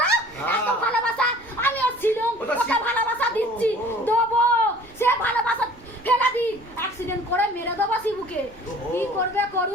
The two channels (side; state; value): right; noise; rumble, 26 dB below the sound